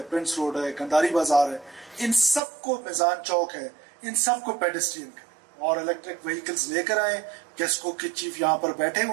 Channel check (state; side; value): drops out; left; at 2.4 s